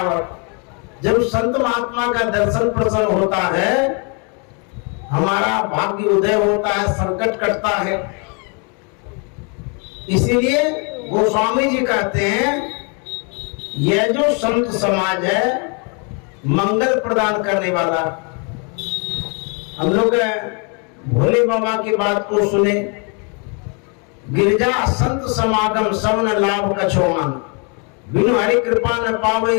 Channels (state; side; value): quieter; right; 35.8 dB